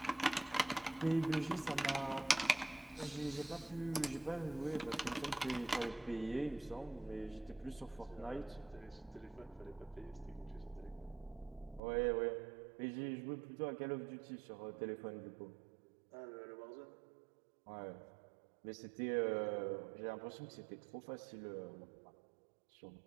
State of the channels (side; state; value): left; drops out; at 11.8 s